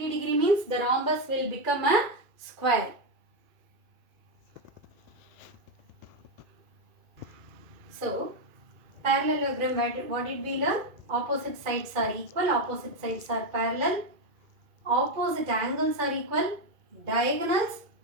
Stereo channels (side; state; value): left; late; 2.3 ms